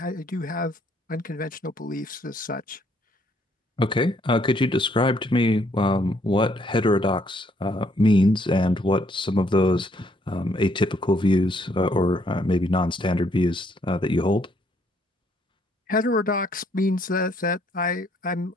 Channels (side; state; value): both; normal; correlation 0.68